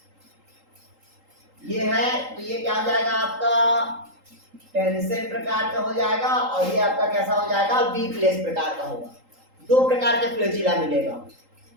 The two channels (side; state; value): left; late; 3.8 ms